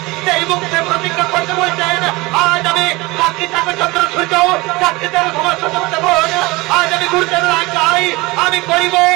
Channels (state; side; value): quieter; left; 22.6 dB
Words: সেই বংশে প্রতিজ্ঞা করতে বলছেন, আজ আমি সাক্ষী থাকবে চন্দ্র সূর্য, সাক্ষী দেব সমস্ত দেবতাগণ, আজ আমি গুরুদেবের আজ্ঞায় আমি করিব